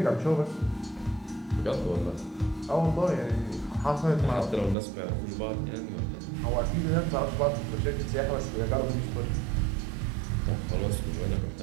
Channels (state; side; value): drops out; left; at 4.8 s